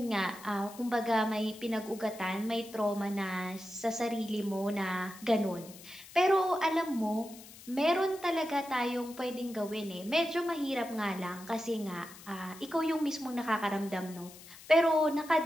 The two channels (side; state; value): left; noise; hiss, 18 dB below the sound